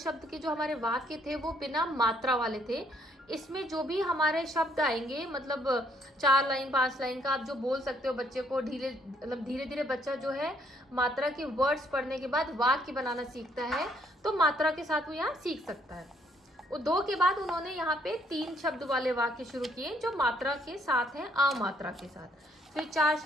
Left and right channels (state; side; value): normal; both; correlation 0.68